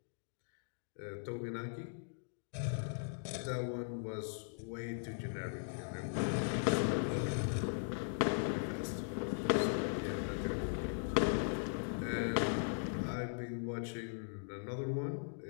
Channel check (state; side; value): silent; right; digital silence